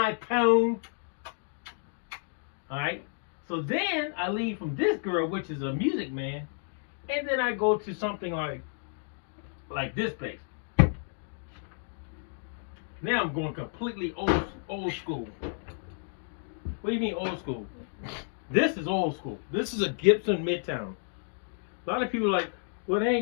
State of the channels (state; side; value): silent; right; digital silence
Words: tone. All right. So then I leave from this girl, which is a Music Man, and then I go to something like this bass. Now I'm going completely old school. What do you mean old school? This is old school. This is a Gibson Midtown. A lot of people are like, well, they